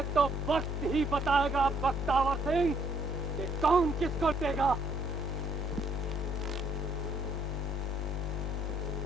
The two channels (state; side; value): normal; both; correlation 0.68